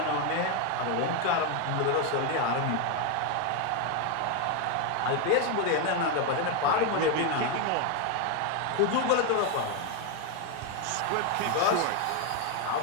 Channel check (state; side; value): different; both; correlation 0.01